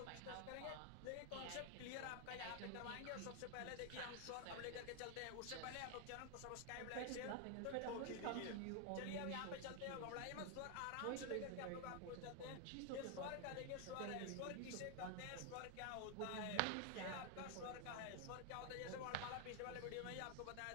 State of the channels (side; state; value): both; different; correlation 0.00